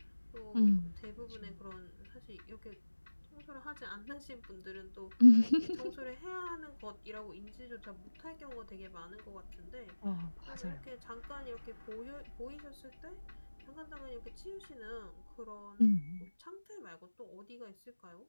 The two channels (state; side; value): inverted; both; correlation -1.00